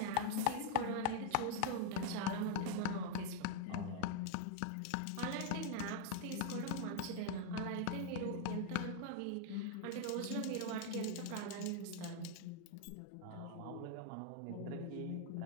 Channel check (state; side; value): different; both; correlation 0.00